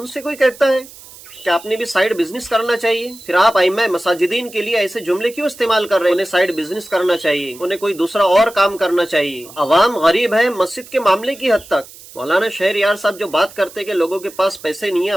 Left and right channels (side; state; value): right; noise; hiss, 19 dB below the sound